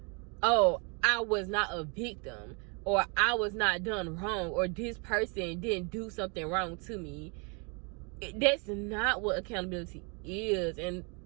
oh, I was not a victim, or I was not done wrong, or this person didn't do something wrong to me. That's not what accountability is. And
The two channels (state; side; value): quieter; left; 34.4 dB